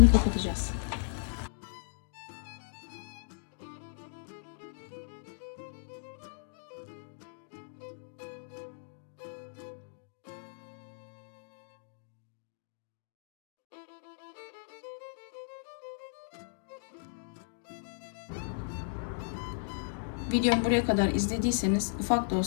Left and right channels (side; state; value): right; silent; digital silence